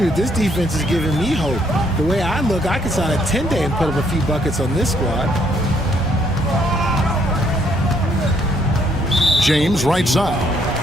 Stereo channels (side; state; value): both; normal; correlation 0.69